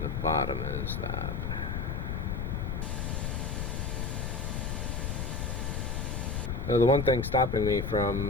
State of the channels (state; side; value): noise; left; rumble, 2 dB below the sound